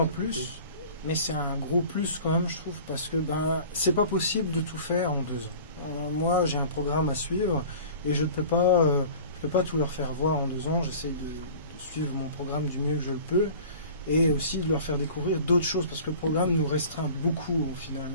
plus, mais c'est un gros plus quand même, je trouve, parce que c'est pas possible de tout faire en 2 ans. Moi, j'ai un programme à suivre et je peux pas tout leur faire voir en 2 ans. J'essaie de suivre mon programme du mieux que je le peux et aussi de leur faire découvrir d'autres choses parce que le programme nous restreint beaucoup au final,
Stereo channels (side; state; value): both; inverted; correlation -0.42